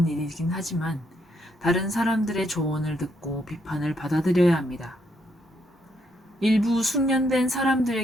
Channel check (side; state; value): both; normal; correlation 0.75